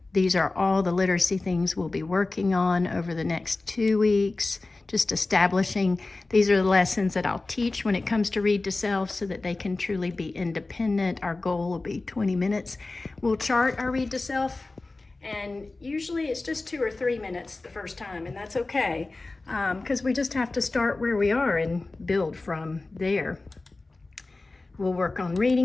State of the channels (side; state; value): right; quieter; 3.3 dB